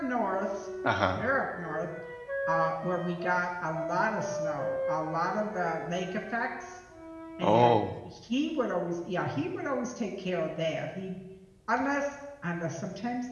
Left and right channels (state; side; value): identical; both; correlation 1.00